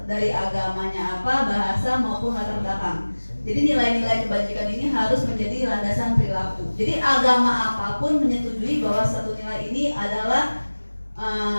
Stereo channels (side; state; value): both; inverted; correlation -1.00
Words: dari agamanya apa, bahasa maupun latar belakang. Jadi nilai-nilai kebajikan ini harus menjadi landasan perilaku. Jadi agama apapun menyetujui bahwa satu nilai ini adalah